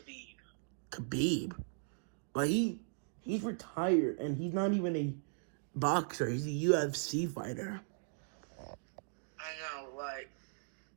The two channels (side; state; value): left; silent; digital silence